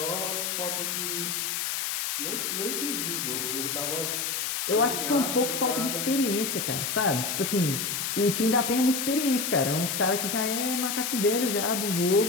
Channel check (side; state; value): left; noise; hiss, 1 dB below the sound